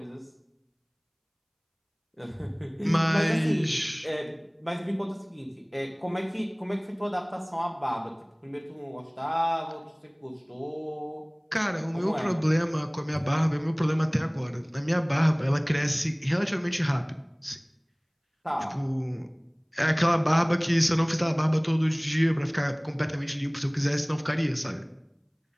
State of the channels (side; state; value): both; identical; correlation 1.00